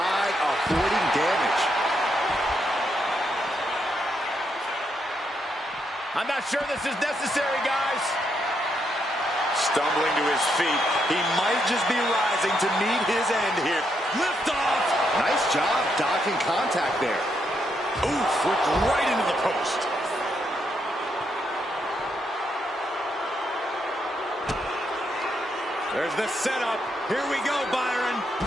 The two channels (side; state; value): both; normal; correlation 0.79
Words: avoiding damage. I'm not sure this is necessary, guys. Stumbling to his feet. He might just be rising to meet his end here. Lift off. Nice job dodging contact there. Oof, flipped right into the post. There's the setup. Here we go, Byron.